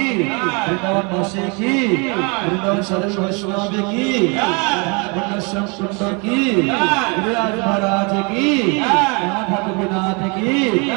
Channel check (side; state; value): left; quieter; 31.4 dB